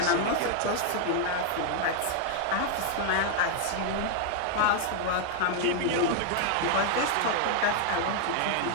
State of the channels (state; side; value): different; both; correlation 0.00